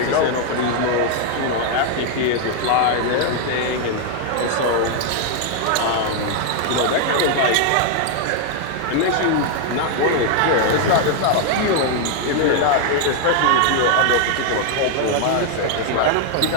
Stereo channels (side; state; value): both; different; correlation 0.00